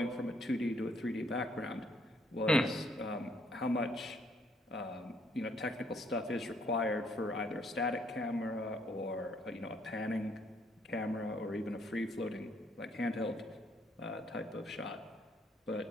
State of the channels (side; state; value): both; normal; correlation 0.68